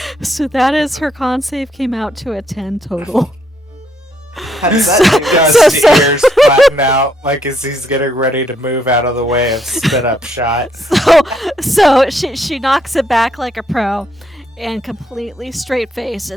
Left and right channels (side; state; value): both; normal; correlation 0.73